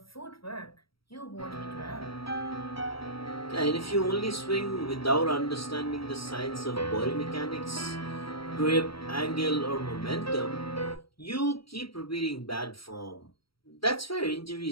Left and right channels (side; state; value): right; late; 0.75 ms